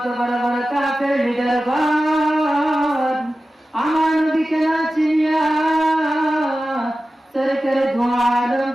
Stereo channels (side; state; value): both; normal; correlation 0.94